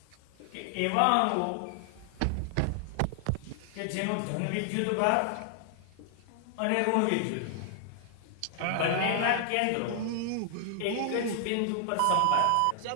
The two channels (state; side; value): different; both; correlation 0.00